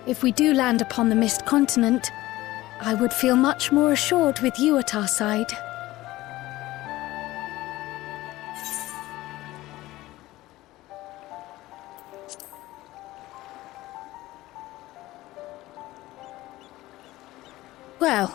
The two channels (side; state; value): right; quieter; 17.5 dB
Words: If we do land upon the Mist Continent, I would feel much more assured with you at our side.